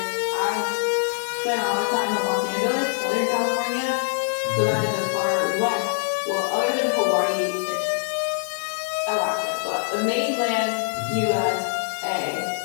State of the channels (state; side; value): silent; right; 63 dB below the other